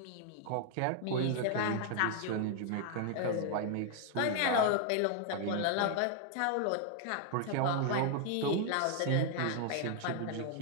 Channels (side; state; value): both; different; correlation 0.00